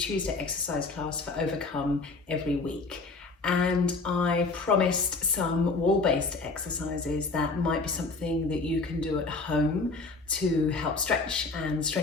exercise class for Overcome every week. And I promised some wall-based exercises that might be something that you can do at home to help stretch and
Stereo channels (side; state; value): right; quieter; 3.8 dB